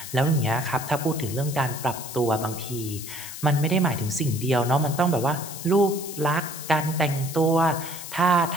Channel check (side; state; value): left; noise; hiss, 10 dB below the sound